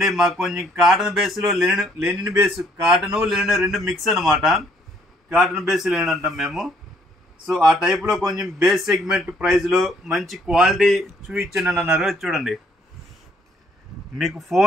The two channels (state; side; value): normal; both; correlation 0.65